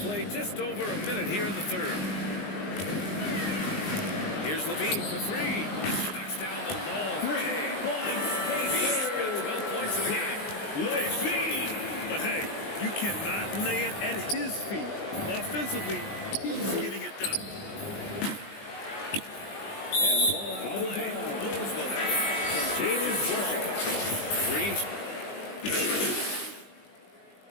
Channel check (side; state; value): right; late; 19 ms